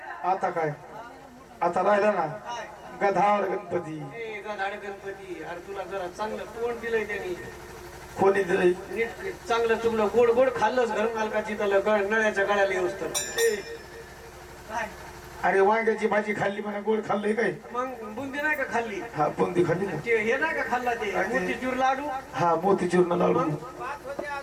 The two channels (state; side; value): identical; both; correlation 1.00